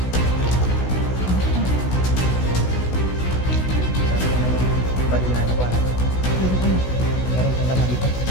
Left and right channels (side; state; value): right; late; 16 ms